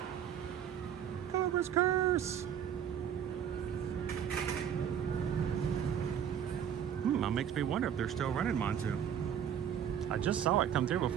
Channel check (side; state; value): left; quieter; 9.0 dB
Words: Cobra's Curse. That makes me wonder if they're still running Montu. I just saw it come through